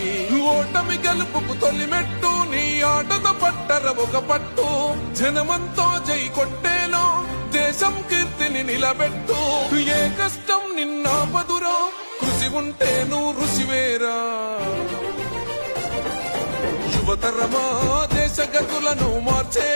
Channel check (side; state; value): both; inverted; correlation -1.00